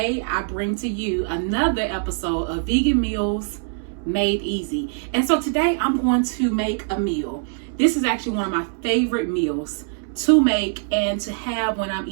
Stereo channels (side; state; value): left; silent; 64 dB below the other